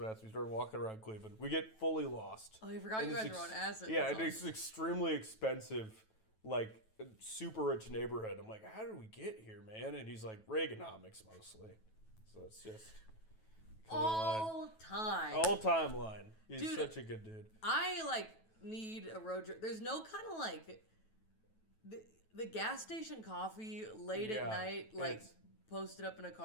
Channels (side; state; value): right; late; 9.2 ms